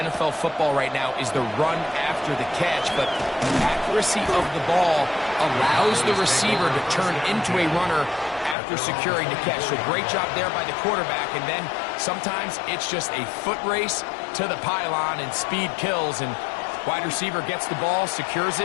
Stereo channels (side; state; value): right; drops out; at 8.6 s